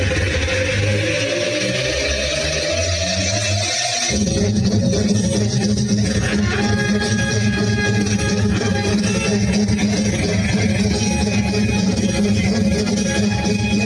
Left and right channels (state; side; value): identical; both; correlation 1.00